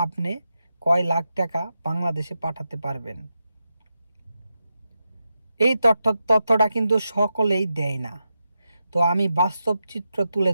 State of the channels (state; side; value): inverted; both; correlation -0.88